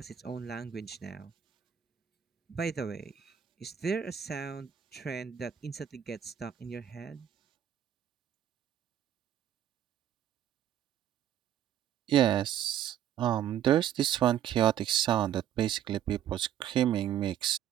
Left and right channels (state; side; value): quieter; left; 10.2 dB